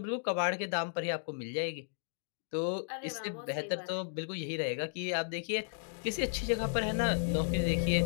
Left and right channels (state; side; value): silent; right; digital silence